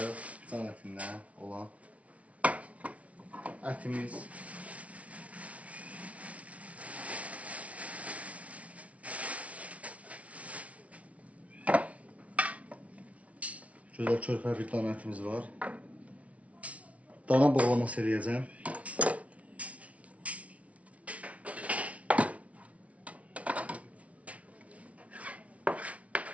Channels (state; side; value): late; left; 0.065 ms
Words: can ətindən olan ətimiz gözəl körpə bir dana ətimiz var. Dana boğlaması eləyəcəm.